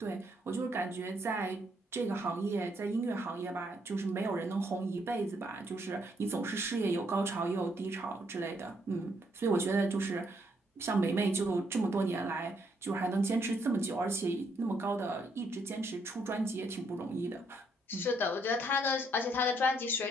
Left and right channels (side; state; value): both; normal; correlation 0.73